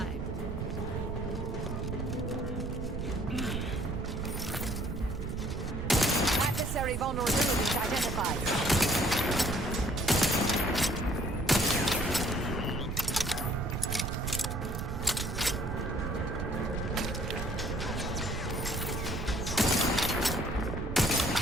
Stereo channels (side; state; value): right; noise; rumble, 4 dB below the sound